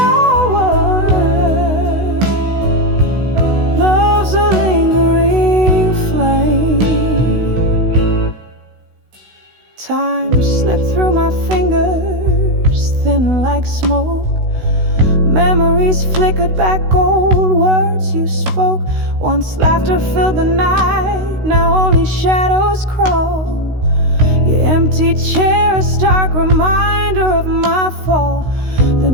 Love's a lingering flame. Time slipped through my fingers, thin like smoke. Memories flickered back, old words you spoke. Once laughter filled the night, now only shadows crawl. Your empty chair, a stark reminder of my fall. The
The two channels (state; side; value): late; left; 16 ms